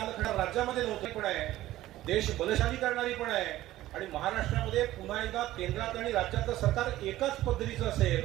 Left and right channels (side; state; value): left; quieter; 15.2 dB